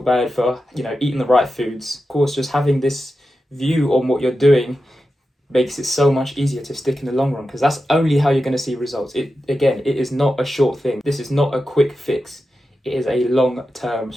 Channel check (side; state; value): both; normal; correlation 0.91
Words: for, eating the right foods. Of course, just having this view on what you're doing makes it so much easier to stick in the long run, because that's only how you're going to see results. It is not a short thing. This is not a quick fix. It is a long-term